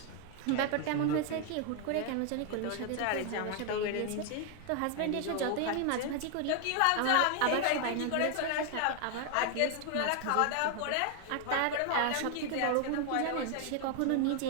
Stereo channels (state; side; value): different; both; correlation 0.00